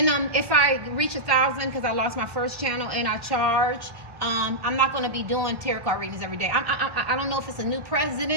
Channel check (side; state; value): left; late; 1.3 ms